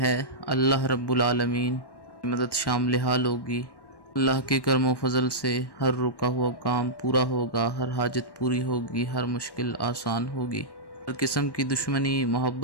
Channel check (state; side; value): late; right; 1.1 ms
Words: اللہ رب العالمین کی مدد شامل حال ہوگی۔ اللہ کے کرم و فضل سے ہر رکا ہوا کام پورا ہوگا، ہر حاجت پوری ہوگی، ہر مشکل آسان ہوگی، ہر قسم کی دشمنی